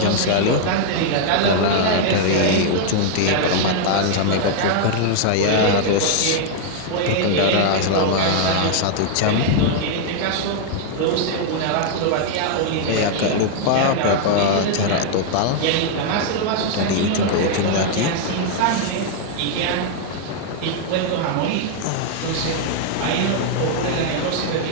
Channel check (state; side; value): different; both; correlation 0.00